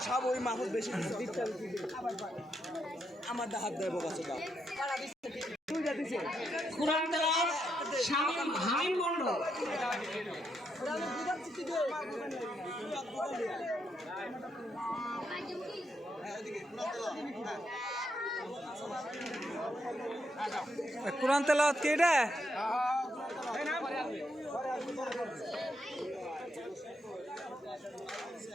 সব ওই মাহফুজ বেশি নিছে কুরআন তেলাওয়াত শামীম হামিম মণ্ডল। কোরআন তেলাওয়াত কি এটা?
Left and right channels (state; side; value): normal; both; correlation 0.80